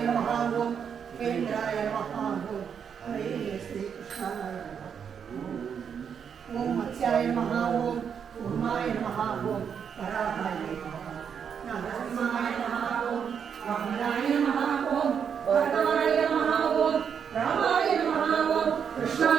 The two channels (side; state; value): left; quieter; 7.4 dB